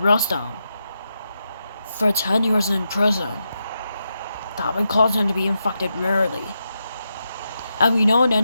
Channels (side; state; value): both; inverted; correlation -0.86